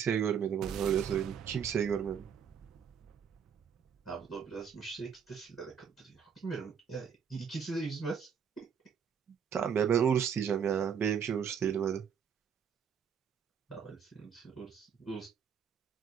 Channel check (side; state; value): left; quieter; 7.5 dB